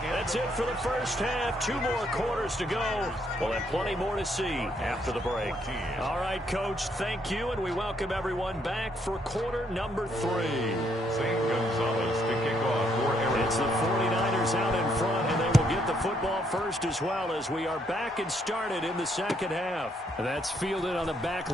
That's it for the first half. 2 more quarters to go. We'll have plenty more to see after the break. All right, Coach, thank you, and we welcome everyone back for quarter number 3. St. Gonzalez to kick off for Arizona. It's the 49ers out in front, and they will get the football first as well as we are back and started in the second half. That's fielded on the back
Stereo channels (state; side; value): normal; both; correlation 0.72